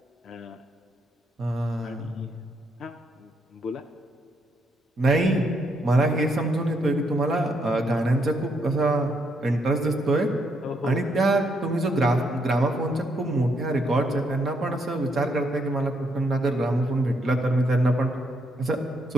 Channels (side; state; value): both; normal; correlation 0.75